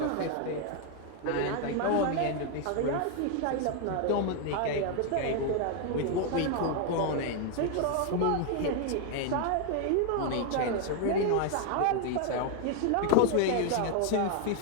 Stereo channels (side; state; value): both; different; correlation 0.00